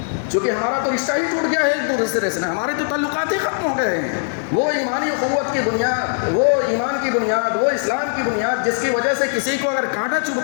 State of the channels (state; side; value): silent; right; 60 dB below the other